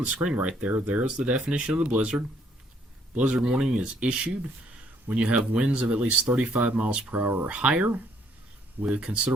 the screen right there, there's the definition of the blizzard. Blizzard warning is issued when you have winds of at least 35 miles per hour or higher, with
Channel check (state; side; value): normal; both; correlation 0.67